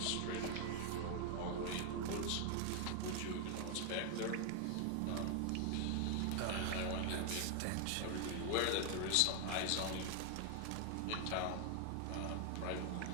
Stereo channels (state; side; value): different; both; correlation 0.00